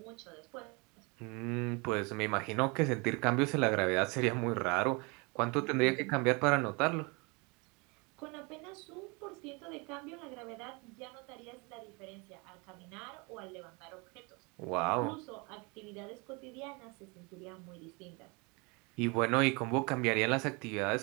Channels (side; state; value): left; quieter; 29.3 dB